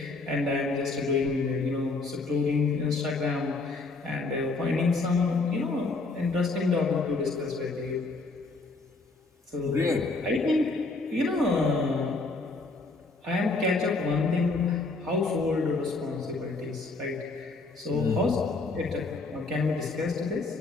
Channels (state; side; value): quieter; right; 3.6 dB